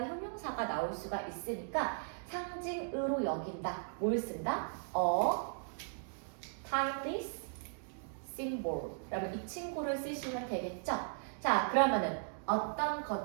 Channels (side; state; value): left; silent; digital silence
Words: 형용사가 나올 수가 있으니까 상징으로 여긴다. 뭘 쓴다? A timeless symbol. 그러면 이 친구를 쓰시면 되겠죠? 자, 그러면은 어떤